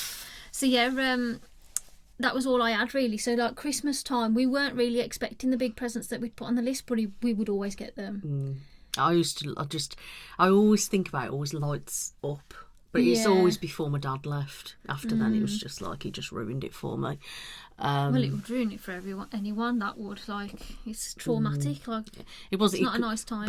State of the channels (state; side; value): identical; both; correlation 1.00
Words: So yeah, that was all I had really. So like Christmas time, we weren't really expecting the big presents that we'd put on the list, but we would always get them. I always think about it, always lights up. But it's always before my dad left. After then, it was just like he just ruined it for me. Well, it would ruin it for anyone. That would, like, it's traumatic. Like, it's not a nice time